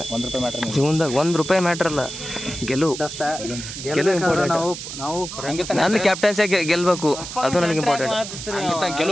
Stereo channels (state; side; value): noise; right; hiss, 9 dB below the sound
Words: $1 ಮ್ಯಾಟ್ರ್ ಜೀವನದಾಗ $1 ಮ್ಯಾಟ್ರ್ ಅಲ್ಲ ಗೆಲುವು ಇಂಪಾರ್ಟೆಂಟ್ ನಂದು ಕ್ಯಾಪ್ಟನ್ಸಿ ಗೆಲ್ಬೇಕು ಅದು ನನಗೆ ಇಂಪಾರ್ಟೆಂಟ್